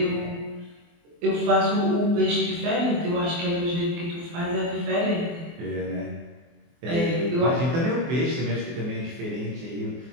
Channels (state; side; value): late; left; 24 ms